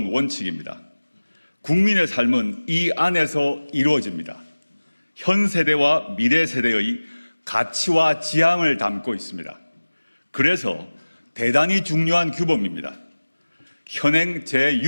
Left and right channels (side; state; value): both; inverted; correlation -1.00